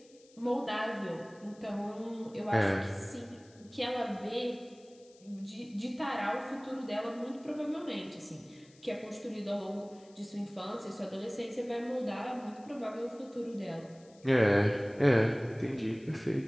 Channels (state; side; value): noise; left; hiss, 27 dB below the sound